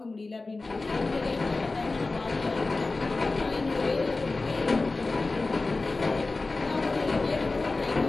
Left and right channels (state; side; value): quieter; right; 3.5 dB